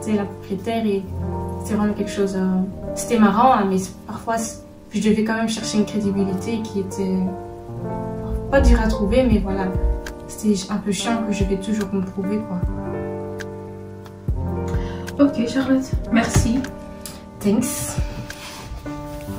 la propriétaire et c'est vraiment quelque chose. C'était marrant, hein, mais parfois je devais quand même chercher une crédibilité qui était pas dure à trouver, mais voilà, c'était un peu chiant que je vais toujours me prouver quoi. Ok Charlotte, merci. Thanks.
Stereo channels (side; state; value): both; identical; correlation 1.00